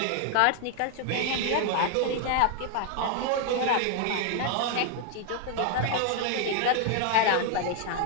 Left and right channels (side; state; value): both; different; correlation 0.00